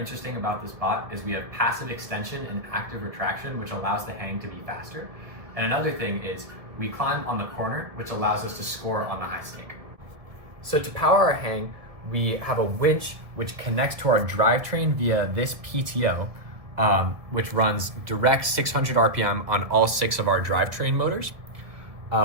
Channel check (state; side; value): late; left; 1.6 ms